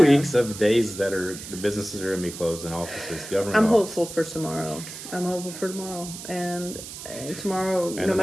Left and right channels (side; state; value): right; noise; hiss, 11 dB below the sound